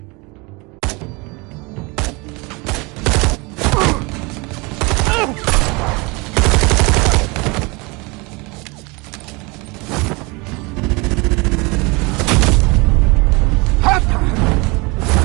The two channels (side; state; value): left; quieter; 26.9 dB